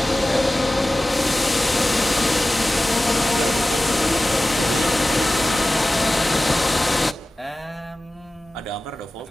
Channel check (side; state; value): both; normal; correlation 0.96